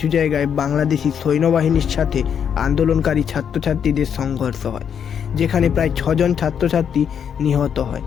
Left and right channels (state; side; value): quieter; right; 7.9 dB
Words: জায়গায় বাংলাদেশি সৈন্যবাহিনীর সাথে আন্দোলনকারী ছাত্রছাত্রীদের সংঘর্ষ হয়, যেখানে প্রায় 6 জন ছাত্রছাত্রী নিহত হয়